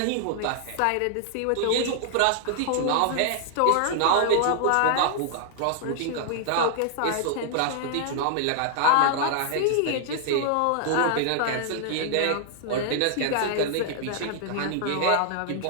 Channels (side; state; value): both; different; correlation -0.01